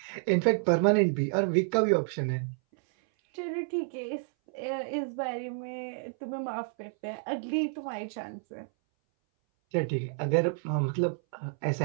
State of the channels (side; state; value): left; silent; 58 dB below the other